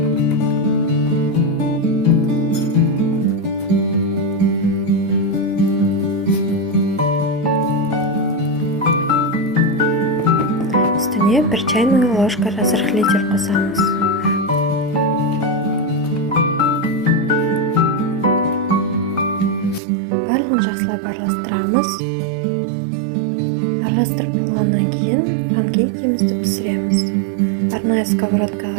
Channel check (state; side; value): drops out; left; at 19.8 s